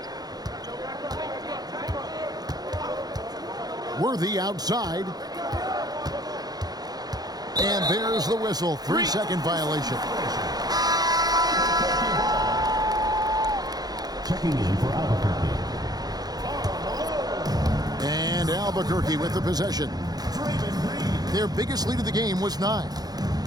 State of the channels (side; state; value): left; late; 0.19 ms